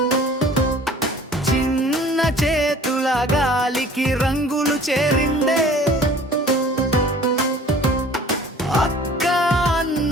చిన్న చేతుల గాలికి రంగులు చేరిందే అక్క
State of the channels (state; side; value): normal; both; correlation 0.49